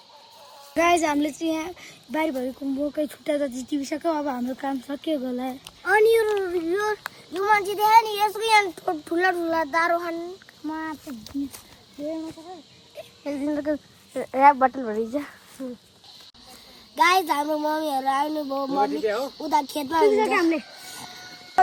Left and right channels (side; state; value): both; identical; correlation 1.00